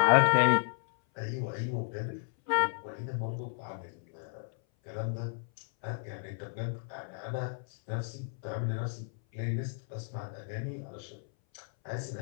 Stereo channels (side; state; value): right; silent; 56 dB below the other